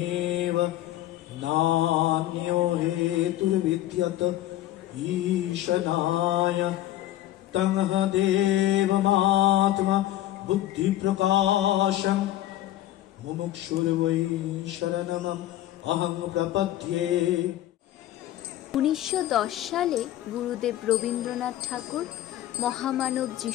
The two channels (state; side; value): quieter; right; 14.0 dB